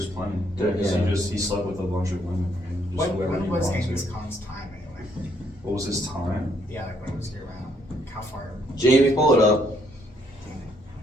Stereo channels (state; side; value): normal; both; correlation 0.70